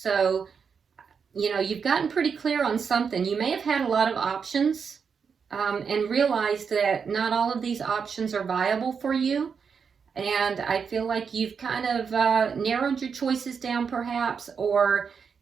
you know, you've gotten pretty clear on something. You may have had a lot of options and realized that not all of these options are viable for you. And I feel like you've kind of narrowed your choices down perhaps, or,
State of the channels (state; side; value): quieter; left; 6.2 dB